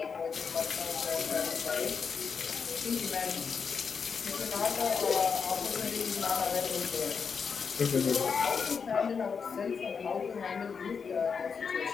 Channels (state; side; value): quieter; right; 5.9 dB